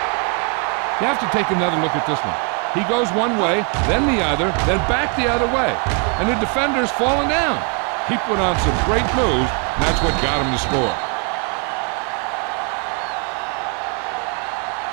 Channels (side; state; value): left; quieter; 36.9 dB